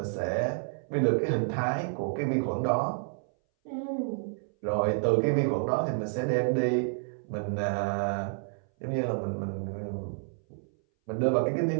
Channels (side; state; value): left; silent; 58 dB below the other